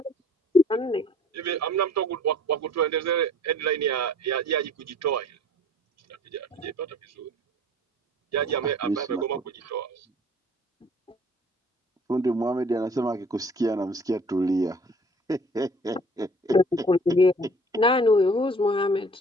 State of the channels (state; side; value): normal; both; correlation 0.51